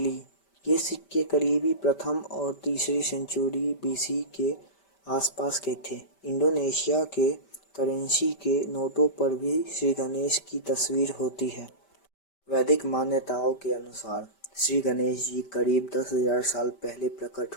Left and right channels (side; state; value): right; late; 5.1 ms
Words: ये सिक्के करीबी प्रथम और तीसरी सेंचुरी बीसी के आसपास के थे। इंडोनेशिया के करेंसी के नोटों पर भी श्री गणेश की तस्वीर होती है। वैदिक मान्यताओं के अनुसार श्री गणेश जी करीब 10,000 साल पहले प्रकट